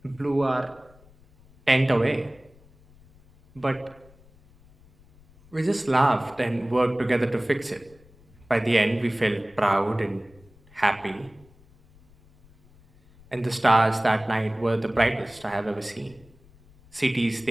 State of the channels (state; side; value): noise; left; rumble, 27 dB below the sound